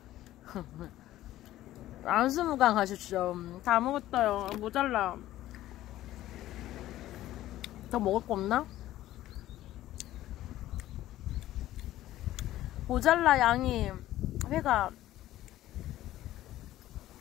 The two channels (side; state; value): right; quieter; 14.4 dB